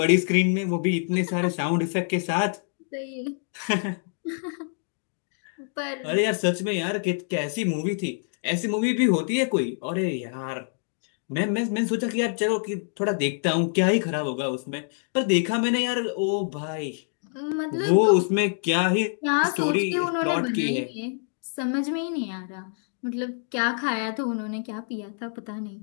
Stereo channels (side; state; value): right; silent; 61 dB below the other